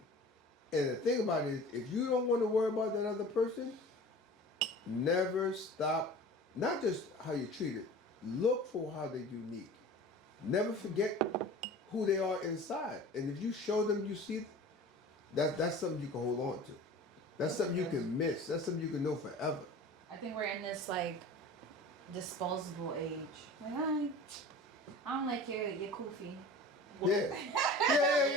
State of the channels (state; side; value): normal; both; correlation 0.40